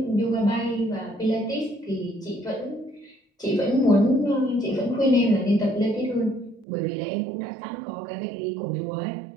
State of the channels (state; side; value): drops out; left; at 6.7 s